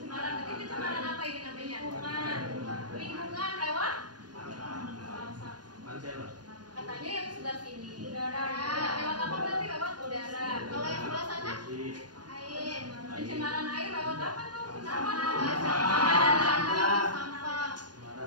Tapi pencemaran apa ini namanya? Lingkungan lewat? Katanya yang sebelah sini. Udara. Lewat apa berarti? Lewat udara. Kalau yang sebelah sana? Air. Pencemaran air lewat apa tuh? Sampah.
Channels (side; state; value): left; late; 0.70 ms